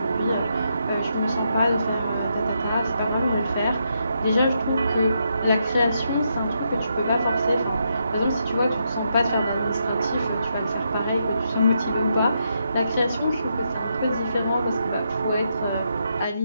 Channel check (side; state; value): both; inverted; correlation -0.80